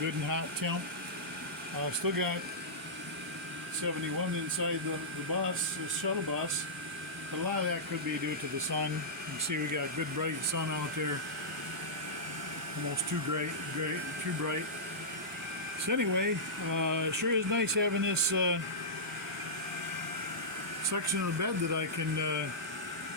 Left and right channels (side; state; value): both; normal; correlation -0.14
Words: and hot temp. Still got 71 inside the bus, the shuttle bus, but a lot of that could be due to the sun. You can see we got good bright sun out there, almost too bright. So anyway, sure is nice having this section of the bed that I can